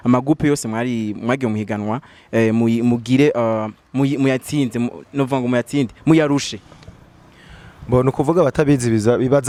amagupe yose mwagiye muhiganwa mugire muyatsinze novuga ngo muyatsinde muyarushe? Bo no kuvuga batabizi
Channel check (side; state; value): both; identical; correlation 1.00